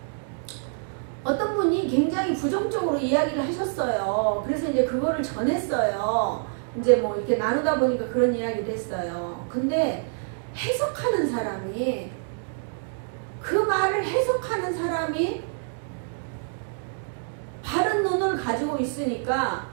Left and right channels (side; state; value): left; silent; digital silence